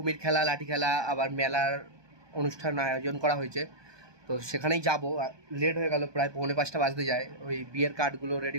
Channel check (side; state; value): left; late; 1.2 ms